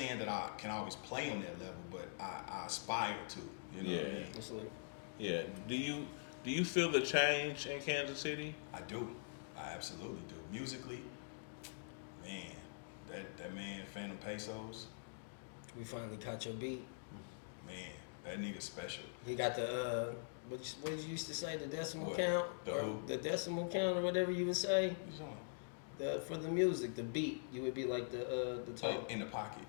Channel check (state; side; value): silent; right; digital silence